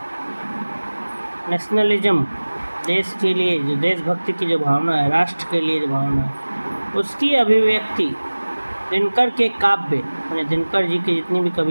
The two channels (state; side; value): inverted; both; correlation -1.00